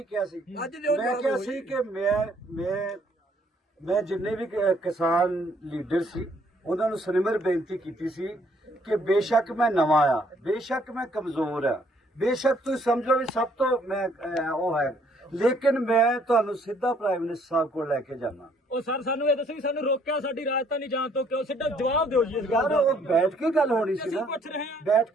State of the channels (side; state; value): both; normal; correlation 0.65